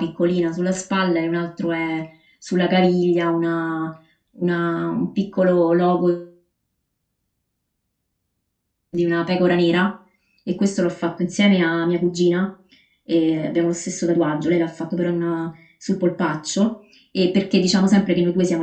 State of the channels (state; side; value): identical; both; correlation 1.00